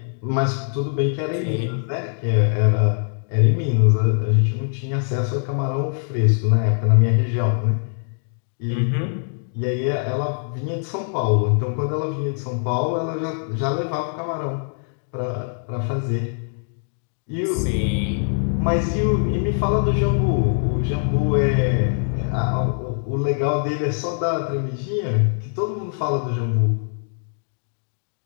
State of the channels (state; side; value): silent; right; digital silence